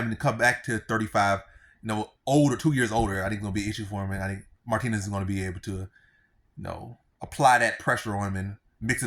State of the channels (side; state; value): both; identical; correlation 1.00